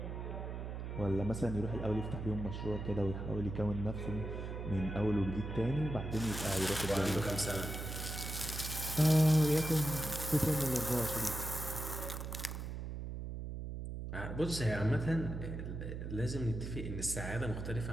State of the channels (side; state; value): right; noise; hum, 6 dB below the sound